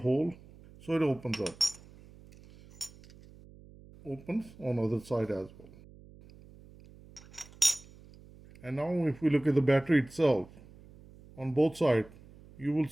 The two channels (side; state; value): right; noise; hum, 22 dB below the sound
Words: so it opens up. Opens on the other side as well. And now if we look at the battery itself, on both sides, you will